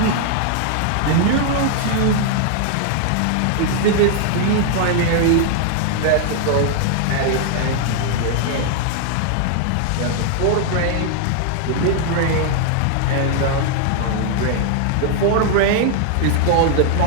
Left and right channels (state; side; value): different; both; correlation 0.00